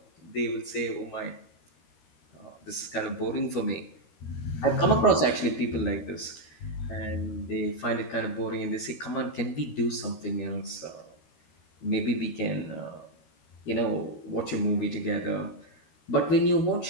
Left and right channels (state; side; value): late; right; 13 ms